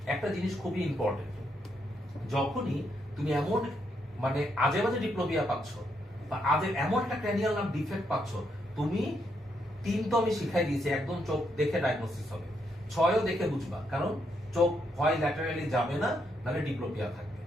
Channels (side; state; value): both; normal; correlation 0.77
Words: একটা জিনিস খুবই ইম্পর্টেন্ট, যখনই তুমি এমন মানে আজে বাজে ডিপ্লোপিয়া পাচ্ছ বা আজে এমন একটা ক্র্যানিয়াল নার্ভ ডিফেক্ট পাচ্ছ, তুমি 3 তো আমি শিখাই দিয়েছি, একদম চোখ দেখে ডায়াগনোসিস হবে। 6ও দেখে বুঝবা, কারণ চোখ হয় ল্যাটারালি যাবে না, নাহলে ডিপ্লোপিয়া থাকবে।